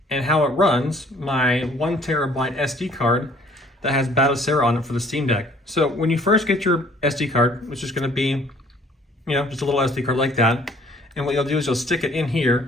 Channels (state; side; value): normal; both; correlation 0.57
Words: and how it runs my 1 terabyte SD card that has Batocera on it for the Steam Deck. So when you first get your SD card, which is going to be, just a little SD card like that, and what you'll do is you'll stick it in